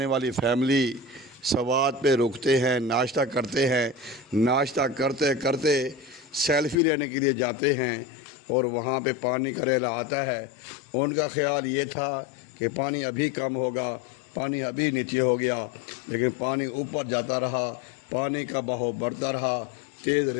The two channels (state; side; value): drops out; right; at 6.8 s